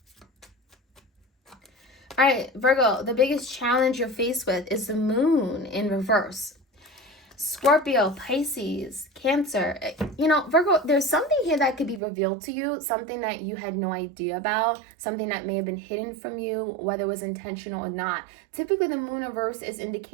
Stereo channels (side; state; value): left; drops out; at 12.0 s